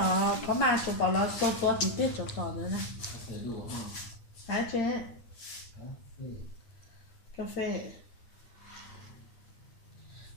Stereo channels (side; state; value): right; late; 9.0 ms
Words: Có mà chú bảo là số to tí tiết cho tỏ nữa nè. Hả chế? Cà phê.